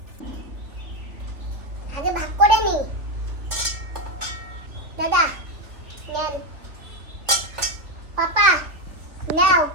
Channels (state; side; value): late; left; 3.5 ms